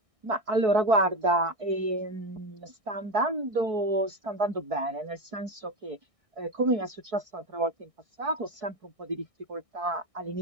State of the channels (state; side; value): late; left; 1.6 ms